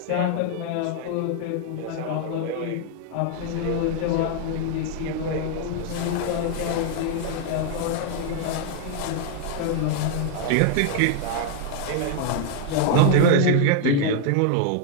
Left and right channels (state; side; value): different; both; correlation 0.00